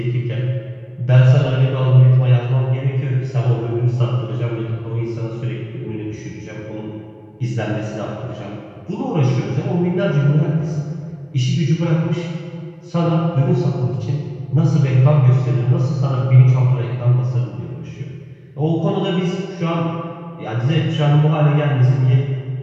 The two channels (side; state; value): both; identical; correlation 1.00